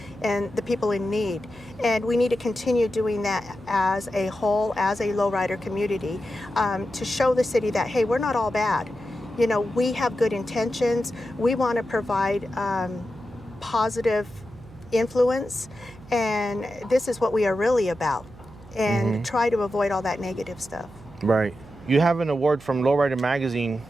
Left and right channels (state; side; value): noise; right; hum, 21 dB below the sound